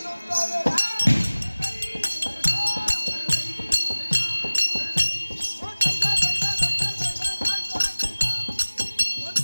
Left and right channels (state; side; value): inverted; both; correlation -1.00